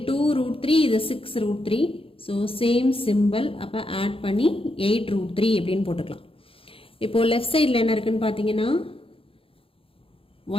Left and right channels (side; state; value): right; late; 0.27 ms